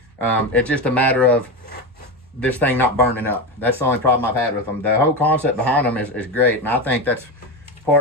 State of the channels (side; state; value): both; normal; correlation 0.17